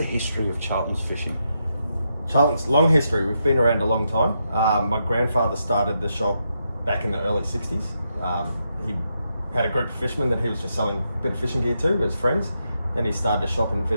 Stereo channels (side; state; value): both; inverted; correlation -0.82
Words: history of Charltons Fishing. Charlton's long history. We've been around a long time. My grandfather started the shop back in the early 60s. He had a group of fishermen that he was just selling a bit of fishing gear to as friends. Then he started a shop in